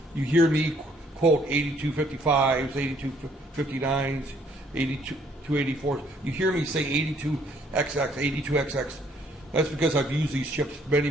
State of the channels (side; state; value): both; normal; correlation 0.65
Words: you hear me quote 8255s, 8259s, 8284s. You hear me say 82XX, 82XX. That's because I've used these chips many,